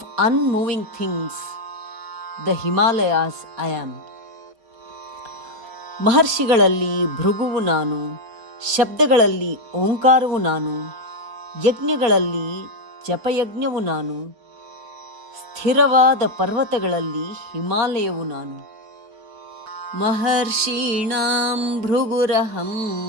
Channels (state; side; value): late; left; 4.6 ms